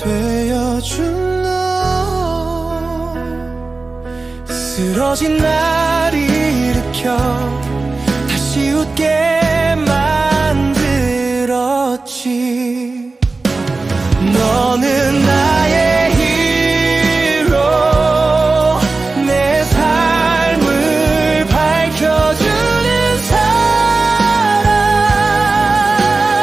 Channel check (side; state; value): left; quieter; 3.7 dB